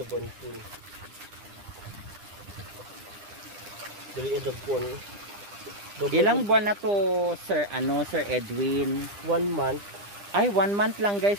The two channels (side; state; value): left; late; 9.9 ms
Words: Dili edagpon. Ilang buwan na to, Sir Edwin? 1 month. Ay, 1 month lang